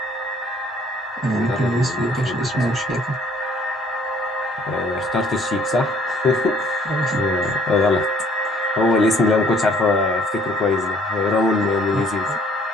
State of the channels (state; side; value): normal; both; correlation 0.60